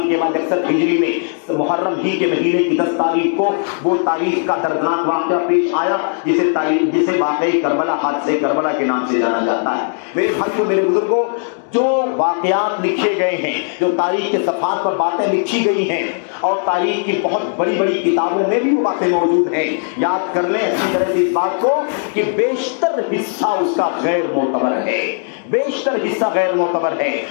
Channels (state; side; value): silent; right; 65 dB below the other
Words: کے بعد 61 ہجری میں محرم ہی کے مہینے کی 10 تاریخ کو وہ تاریخ کا دردناک واقعہ پیش آیا جسے واقعی کربلا, حادثے کربلا کے نام سے جانا جاتا ہے. میرے بھائیوں, میرے بزرگوں, جو واقعات لکھے گئے ہیں, جو تاریخ کے صفحات پر باتیں لکھی گئی ہیں اور تاریخ کی بہت بڑی بڑی کتابوں میں بھی وہ باتیں موجود ہیں, یاد کر لیں اچھی طرح سے اس بات کو کہ بیشتر حصہ اس کا غیر معتبر ہے, بیشتر حصہ غیر معتبر معتبر ہے،